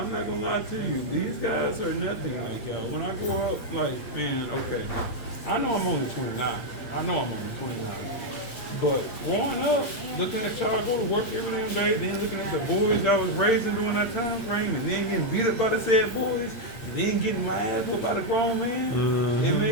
not going to lie to you, these guys are nothing like y'all. When I grow up, like, man, okay, I know I'm only 29. I know I'm only 29. But growing up, looking at y'all go to work every damn day, then looking at the boys I was raising during that time frame, and then getting beat up by the said boys, and then getting my ass whooped by the grown man, it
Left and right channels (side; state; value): right; late; 8.3 ms